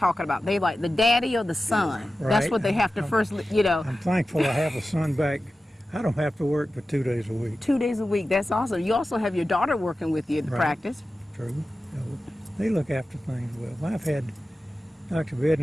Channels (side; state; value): both; normal; correlation 0.94